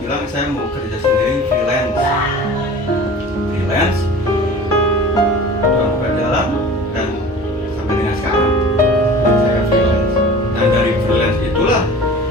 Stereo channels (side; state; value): both; normal; correlation 0.41